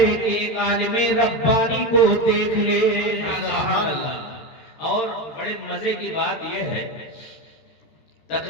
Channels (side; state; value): right; late; 14 ms